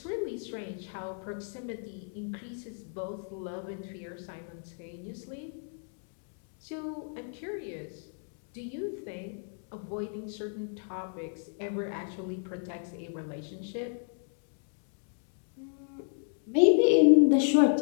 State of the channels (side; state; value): right; silent; 56 dB below the other